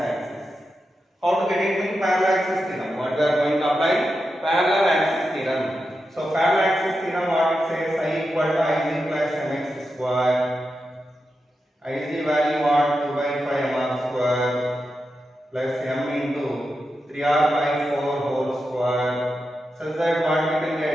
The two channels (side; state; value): both; normal; correlation 0.89